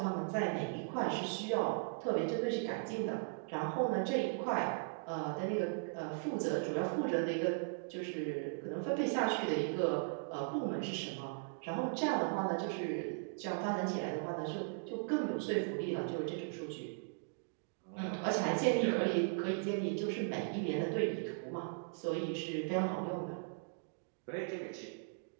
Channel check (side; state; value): left; silent; digital silence